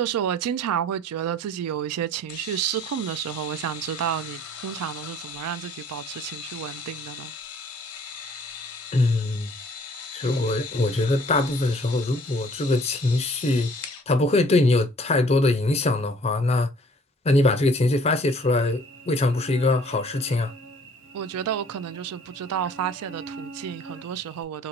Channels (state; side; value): normal; both; correlation 0.55